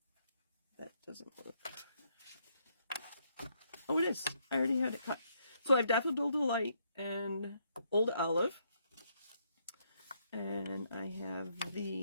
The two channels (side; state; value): both; inverted; correlation -0.73